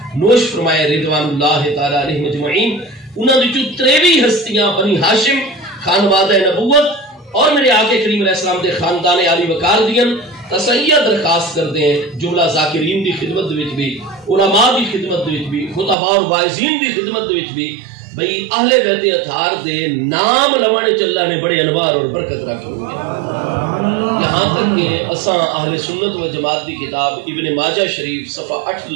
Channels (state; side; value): drops out; left; at 16.0 s